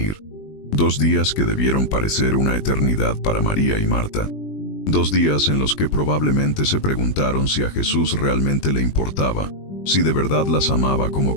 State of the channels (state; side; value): late; right; 20 ms